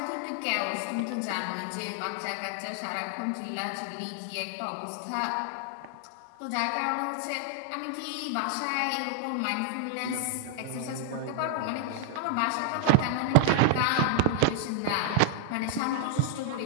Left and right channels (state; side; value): different; both; correlation 0.00